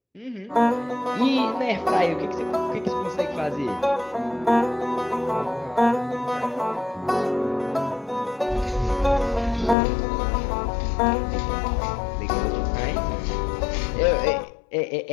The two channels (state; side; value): drops out; right; at 9.8 s